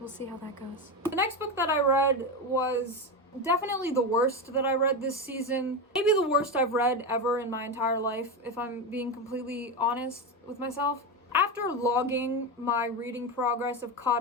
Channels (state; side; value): normal; both; correlation 0.15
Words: how that goes. The next book that I read was definitely the worst that I read this season. Maybe the worst I've read ever in my entire life, if I'm being completely honest with myself. After logging my reading progress of